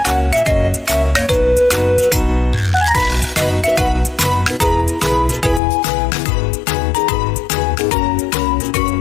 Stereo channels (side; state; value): right; drops out; at 5.6 s